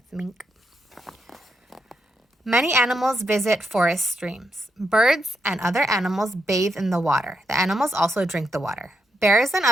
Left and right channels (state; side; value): normal; both; correlation 0.82